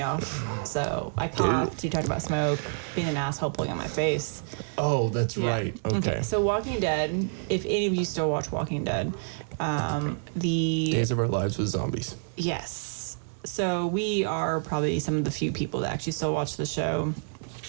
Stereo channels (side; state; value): left; silent; 59 dB below the other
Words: off. So I coughed. You talked about smoke, being an asshole, pulling on my face. Oh, that's Yeah. right. Okay. So Walking Dead, if any of you still watch Walking Dead, the Days of Our Lives with Zombies. yes. So we are probably some of the few people that actually still watch the show.